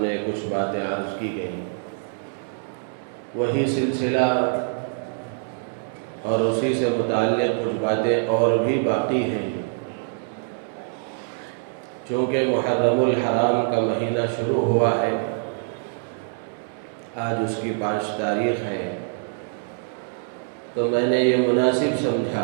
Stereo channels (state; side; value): silent; left; digital silence